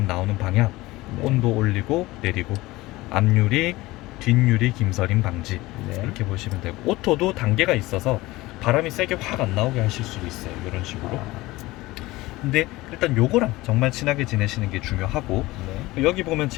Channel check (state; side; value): quieter; right; 19.5 dB